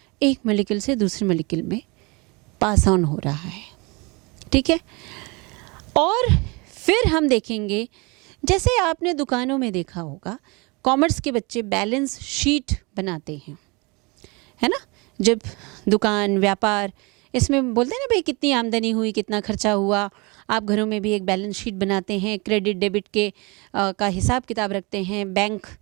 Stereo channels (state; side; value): quieter; left; 27.7 dB